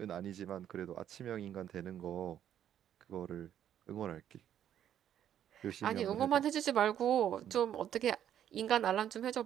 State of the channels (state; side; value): quieter; left; 10.3 dB